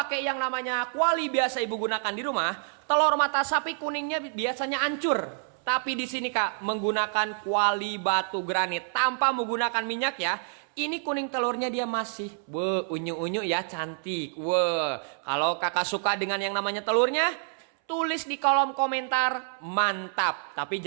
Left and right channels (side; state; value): left; silent; 59 dB below the other